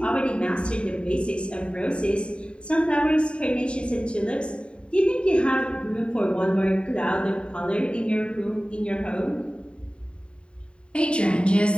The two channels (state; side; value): late; right; 0.055 ms